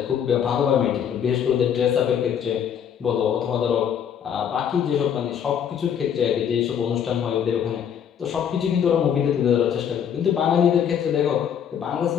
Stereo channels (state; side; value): quieter; right; 8.5 dB